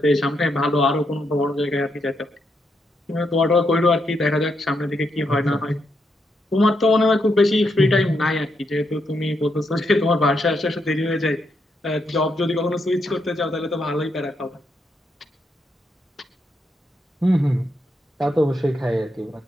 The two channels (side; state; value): both; normal; correlation 0.80